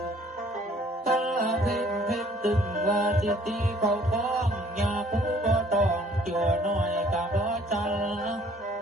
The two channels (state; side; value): normal; both; correlation 0.58